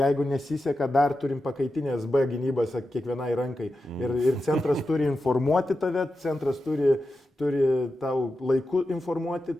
nesiseka, dar turim pakaitinės B gynybas kiekvienai rankai. Ir centras turi informuoti tave, centras turi tau laiku informuoti,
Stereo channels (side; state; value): both; normal; correlation 0.90